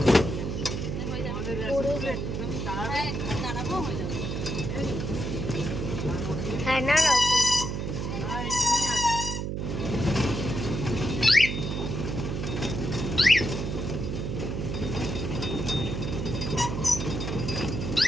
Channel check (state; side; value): noise; right; hum, 3 dB below the sound